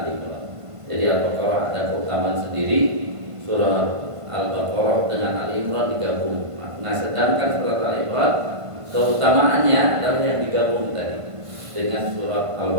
Imran. Jadi Al-Baqarah ada keutamaan sendiri, surah Al-Baqarah dengan Ali Imran digabung. Nah, sedangkan surat Ali Imran keutamaannya adalah yang digabung tadi dengan surat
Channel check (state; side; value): late; left; 1.5 ms